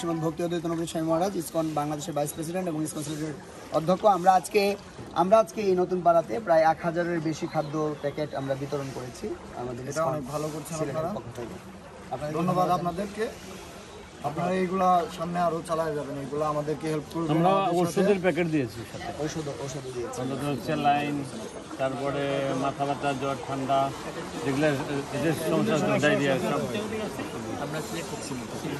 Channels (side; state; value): both; identical; correlation 1.00